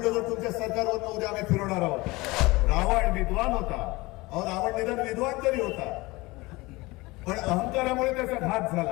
तुमच्या सरकारवरनं उद्या आम्ही फिरवणार आहोत. रावण विद्वान होता, अहो रावण निदान विद्वान तरी होता, पण अहंकारामुळे त्याचा घात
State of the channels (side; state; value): right; quieter; 22.2 dB